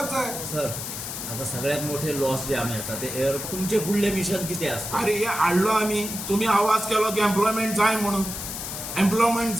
जाय. सर आता सगळ्यात मोठे लॉस जे आम्ही आसा ते एअर तुमचे फुडले मिशन कितें आसता. अरे हे हाडलो आमी. तुमी आवाज केलो की एम्प्लॉयमेंट जाय म्हणून. एम्प्लॉयमेंट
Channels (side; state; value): left; noise; hiss, 6 dB below the sound